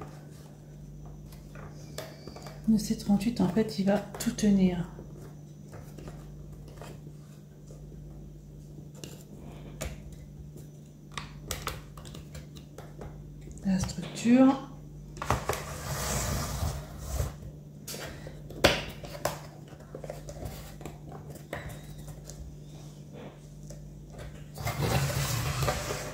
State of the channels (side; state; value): both; identical; correlation 1.00